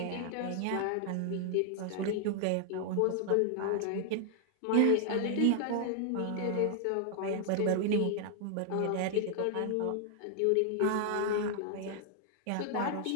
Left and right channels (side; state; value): both; different; correlation 0.00